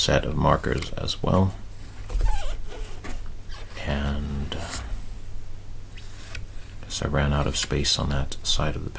of markers as well. And I guess I ran out of space on that side of the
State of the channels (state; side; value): identical; both; correlation 1.00